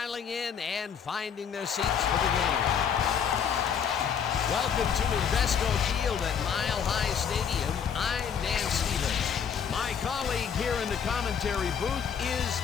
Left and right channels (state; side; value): quieter; right; 7.5 dB